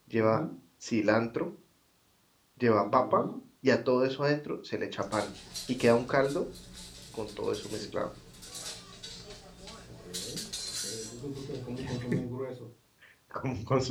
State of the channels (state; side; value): identical; both; correlation 1.00